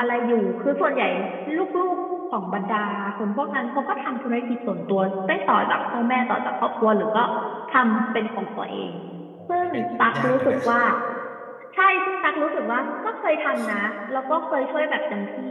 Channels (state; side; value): identical; both; correlation 1.00